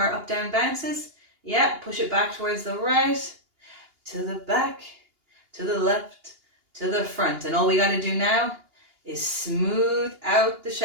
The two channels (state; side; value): late; left; 2.8 ms